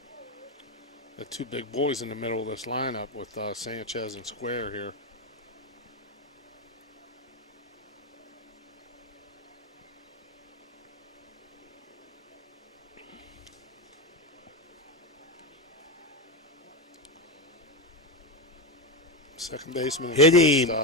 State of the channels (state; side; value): normal; both; correlation 0.13